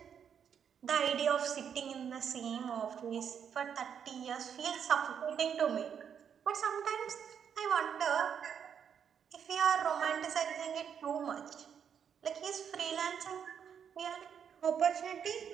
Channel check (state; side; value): quieter; left; 7.9 dB